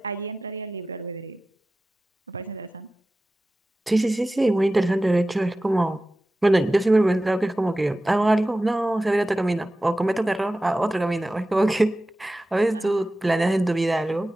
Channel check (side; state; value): both; normal; correlation 0.95